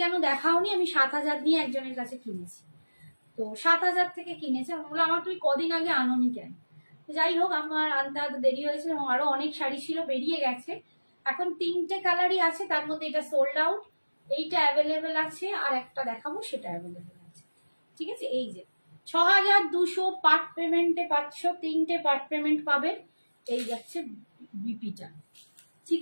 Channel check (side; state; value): both; inverted; correlation -1.00